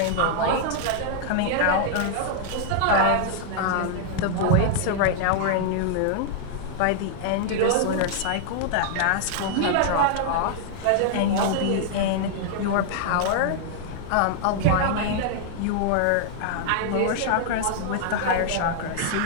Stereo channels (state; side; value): different; both; correlation -0.01